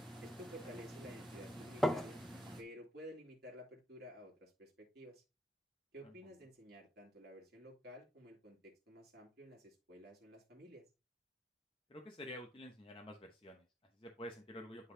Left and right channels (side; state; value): both; normal; correlation 0.79